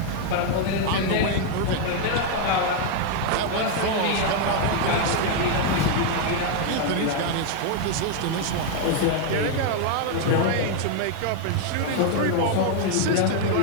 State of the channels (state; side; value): different; both; correlation 0.01